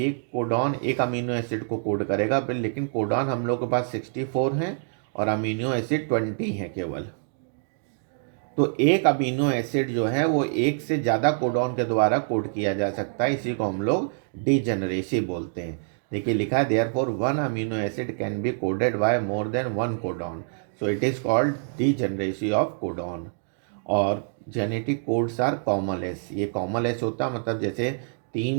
कोडॉन एक अमीनो एसिड को कोड करेगा, लेकिन कोडॉन हम लोग के पास 64 हैं और अमीनो एसिड 20 हैं केवल। तो एक अमीनो एसिड जो है वो एक से ज़्यादा कोडॉन के द्वारा कोड किया जा सकता है, इसी को हम लोग डीजेनरेसी बोलते हैं। देखिए लिखा है therefore one amino acid can be coded by more than one codon, so it is called degeneracy of codon. और जेनेटिक कोड्स आर कॉमलेस। ये कॉमलेस होता मतलब जैसे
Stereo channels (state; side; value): silent; left; digital silence